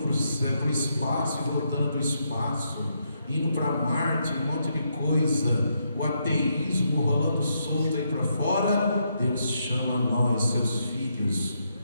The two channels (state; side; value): inverted; both; correlation -0.79